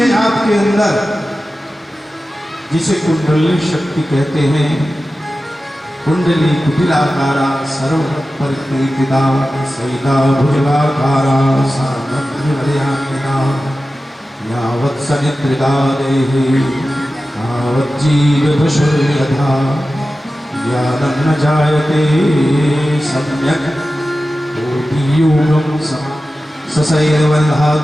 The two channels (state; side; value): normal; both; correlation 0.94